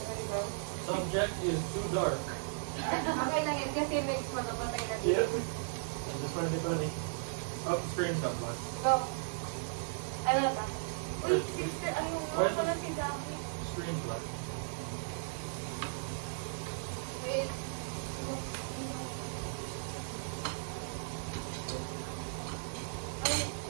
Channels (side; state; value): left; silent; digital silence